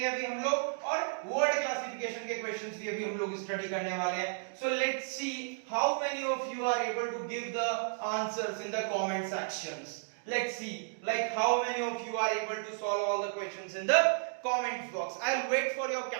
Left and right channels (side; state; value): left; silent; digital silence